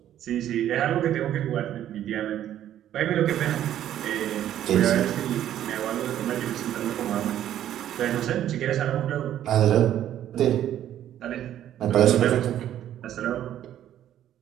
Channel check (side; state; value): left; quieter; 11.4 dB